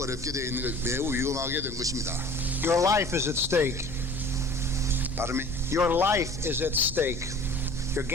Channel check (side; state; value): left; noise; rumble, 13 dB below the sound